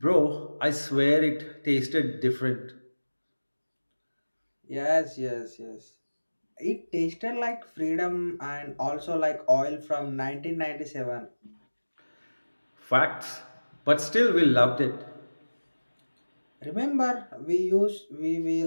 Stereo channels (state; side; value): inverted; both; correlation -1.00